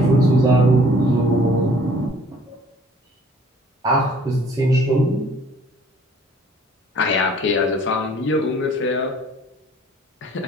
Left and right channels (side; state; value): both; normal; correlation 0.55